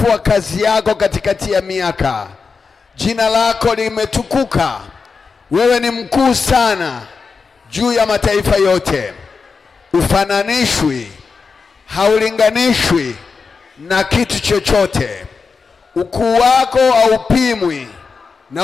kazi yako katikati ya miaka. Jina lako limetukuka. Wewe ni mkuu sana juu ya mataifa yote. Ufananishwi, haulinganishwi na kitu chochote. Ukuu wako haupimwi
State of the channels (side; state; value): right; quieter; 5.0 dB